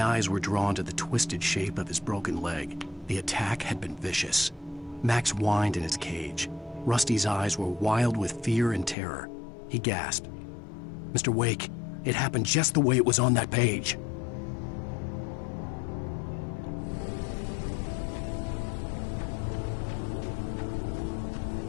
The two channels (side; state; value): right; drops out; at 9.0 s